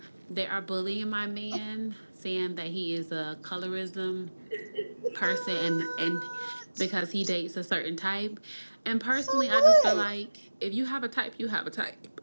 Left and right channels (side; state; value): both; inverted; correlation -1.00